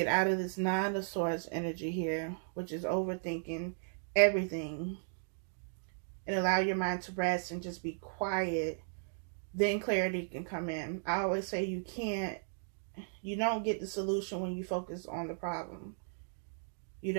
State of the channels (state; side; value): silent; left; digital silence